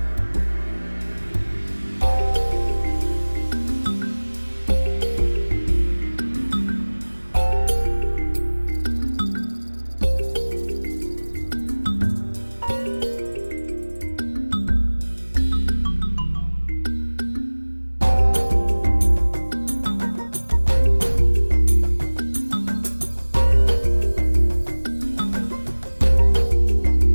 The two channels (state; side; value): inverted; both; correlation -1.00